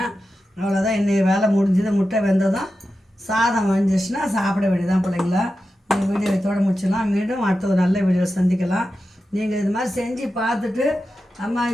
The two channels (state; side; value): normal; both; correlation 0.91